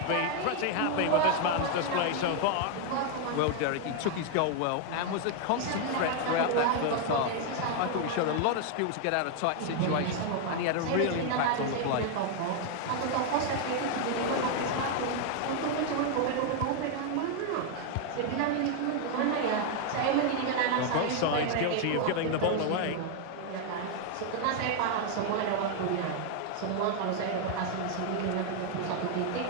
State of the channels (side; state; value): both; different; correlation 0.00